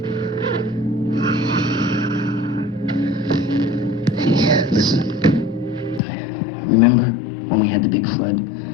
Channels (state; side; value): drops out; right; at 6.0 s